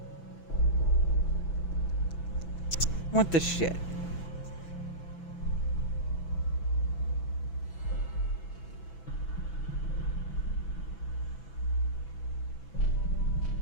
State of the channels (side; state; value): right; late; 6.0 ms